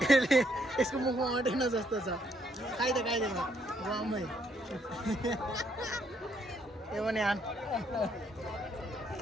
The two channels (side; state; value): both; normal; correlation 0.71